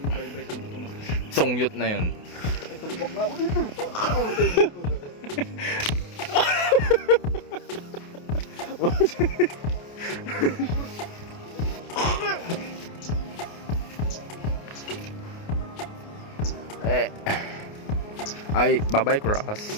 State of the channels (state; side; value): late; right; 28 ms